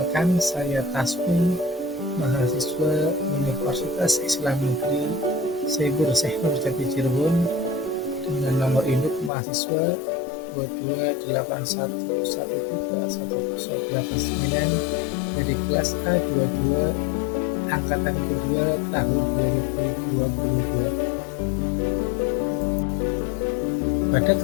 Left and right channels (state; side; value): drops out; right; at 9.3 s